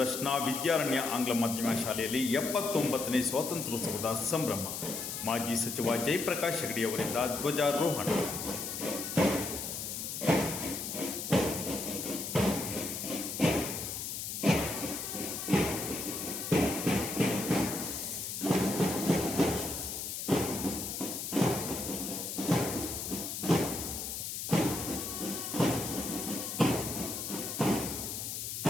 ವಿದ್ಯಾರಣ್ಯ ಆಂಗ್ಲ ಮಾಧ್ಯಮ ಶಾಲೆಯಲ್ಲಿ 79ನೇ ಸ್ವಾತಂತ್ರ್ಯೋತ್ಸವದ ಸಂಭ್ರಮ. ಮಾಜಿ ಸಚಿವ ಜಯಪ್ರಕಾಶ್ ಹೆಗಡೆ ಅವರಿಂದ ಧ್ವಜಾರೋಹಣ.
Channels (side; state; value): left; noise; hiss, 5 dB below the sound